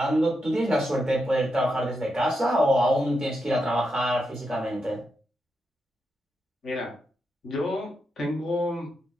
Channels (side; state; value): both; normal; correlation 0.85